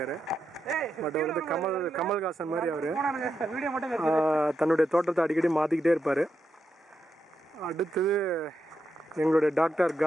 பட் அவர் வந்து கமல்ஹாசன் மாதிரி அவர் தன்னுடைய தோட்டத்தை அடிக்கடி மாற்றிக்கிட்டே இருப்பார். அடுத்தது எங்களுடைய டாக்டர்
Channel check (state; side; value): normal; both; correlation 0.84